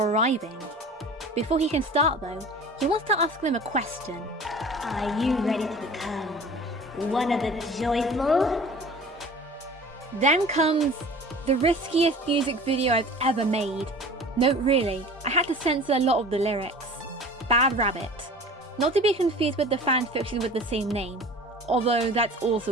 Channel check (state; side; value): normal; both; correlation 0.42